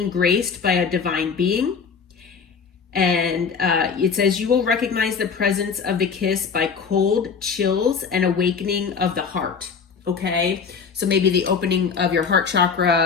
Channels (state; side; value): quieter; right; 5.9 dB